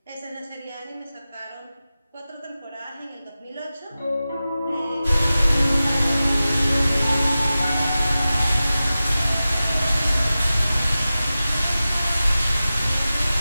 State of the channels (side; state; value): both; inverted; correlation -0.95